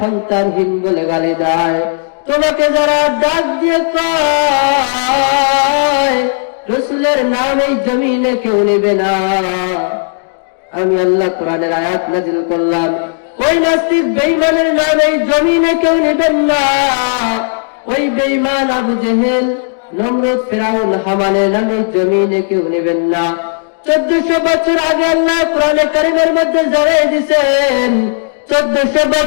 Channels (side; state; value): right; silent; digital silence